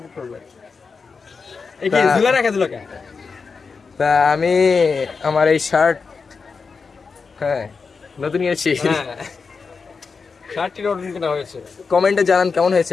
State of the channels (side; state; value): right; quieter; 5.0 dB